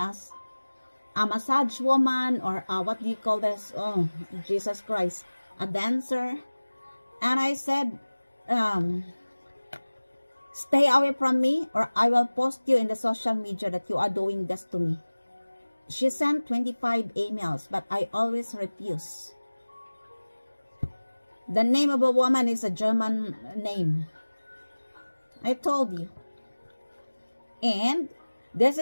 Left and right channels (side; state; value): both; inverted; correlation -1.00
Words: a massage woman, or what do you call this? Oh, Jesus Christ. A dancer. And I said, stay away from me, or I will post you in the social media that you are doing this to me. She sent 25 emails, but I always refuse. The name of a woman is a German name. I told you. And this